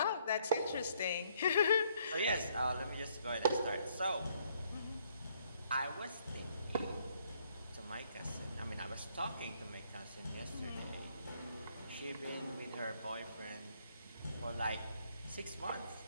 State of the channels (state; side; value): inverted; both; correlation -0.68